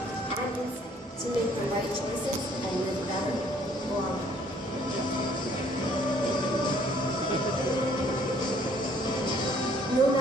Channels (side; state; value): both; normal; correlation 0.61